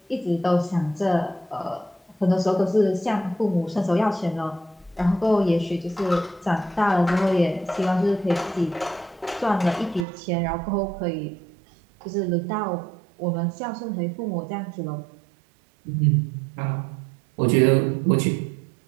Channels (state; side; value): drops out; left; at 10.1 s